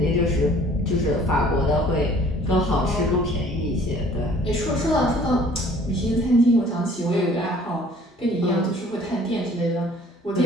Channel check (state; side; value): normal; both; correlation 0.54